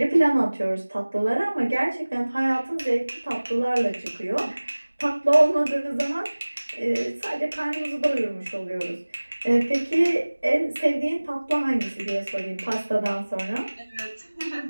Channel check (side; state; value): both; inverted; correlation -1.00